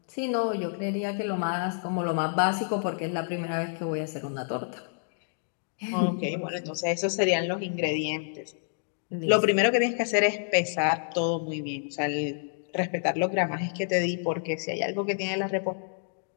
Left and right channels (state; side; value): silent; right; digital silence